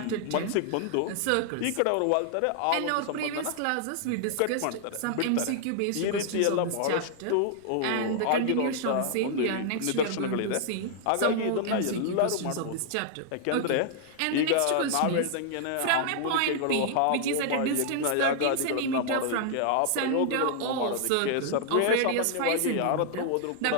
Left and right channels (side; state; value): both; different; correlation -0.01